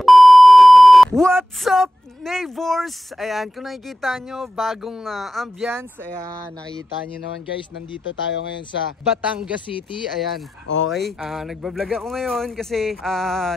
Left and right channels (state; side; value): normal; both; correlation 0.93